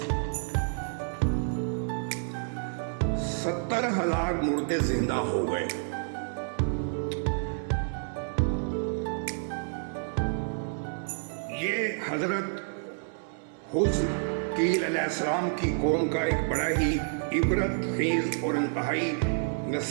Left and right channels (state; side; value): silent; left; 55 dB below the other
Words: ستر ہزار مردے زندہ ہو گئے۔ یہ حضرت حزقیل علیہ السلام کی قوم کا ایک بڑا ہی عبرت خیز اور انتہائی